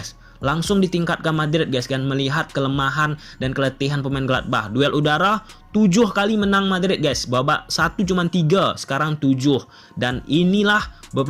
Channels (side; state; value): both; identical; correlation 1.00